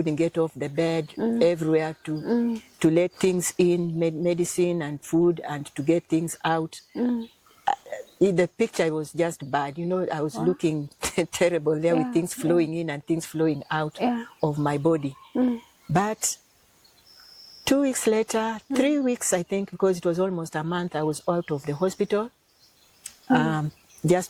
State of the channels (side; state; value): both; identical; correlation 1.00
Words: get off the bed everywhere to let things in, medicine and food, and to get things out. The picture was just bad. You know, I was looking terrible there with things flowing in and things flowing out of my body. But 2 weeks later, 3 weeks, I think, because it was almost a month, I was out of the hospital,